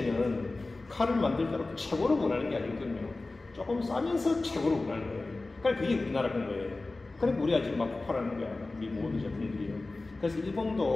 칼을 만들더라도 최고로 원하는 게 아니거든요. 조금 싸면서 최고로 원하는 거예요. 그러니까 그게 우리나라인 거예요. 그러니까 우리가 지금 막 폭발하는 거야. 우리 모든 제품들이요. 그래서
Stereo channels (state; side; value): quieter; right; 3.2 dB